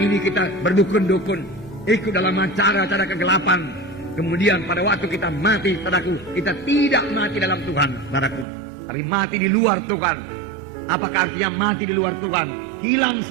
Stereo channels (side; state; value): left; drops out; at 8.5 s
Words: kita berdukun-dukun, ikut dalam cara-cara kegelapan. Kemudian pada waktu kita mati, saudaraku, kita tidak mati dalam Tuhan, saudaraku, tapi mati di luar Tuhan. Apakah artinya mati di luar Tuhan? Hilang